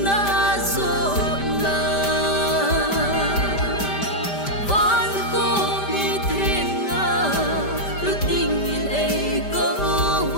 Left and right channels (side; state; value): right; late; 5.1 ms